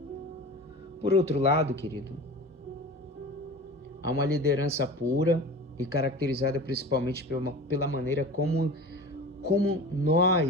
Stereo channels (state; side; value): normal; both; correlation 0.34